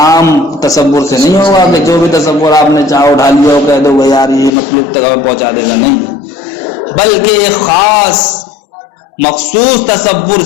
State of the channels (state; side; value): drops out; right; at 4.5 s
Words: تصور سے نہیں ہوگا کہ جو بھی تصور آپ نے چاہو اٹھا لیا ہو کہہ دو وہ یار یہ مطلوب تک ہمیں پہنچا دے گا، نہیں، بلکہ ایک خاص مخصوص تصور